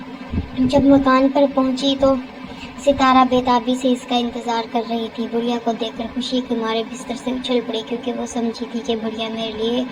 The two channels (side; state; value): both; identical; correlation 1.00